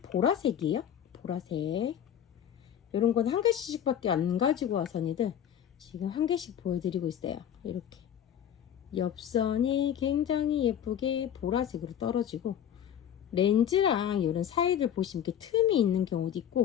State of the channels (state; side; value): quieter; right; 9.7 dB